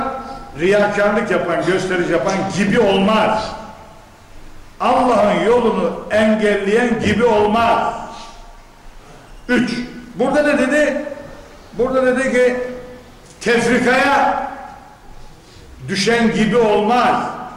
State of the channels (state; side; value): identical; both; correlation 1.00